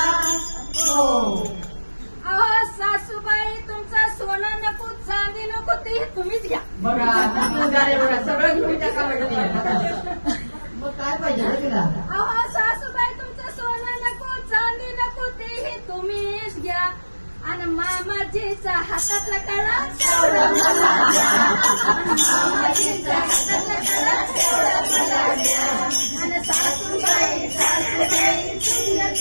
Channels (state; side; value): inverted; both; correlation -1.00